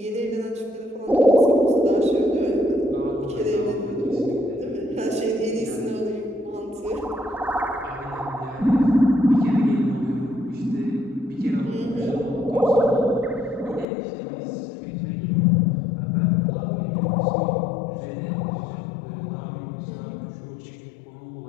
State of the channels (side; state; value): right; drops out; at 13.9 s